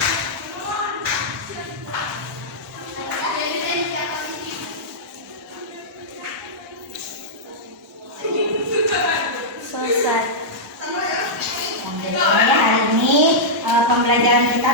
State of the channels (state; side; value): normal; both; correlation -0.10